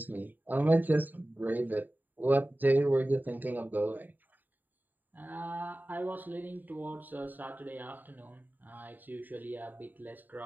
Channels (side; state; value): left; late; 0.088 ms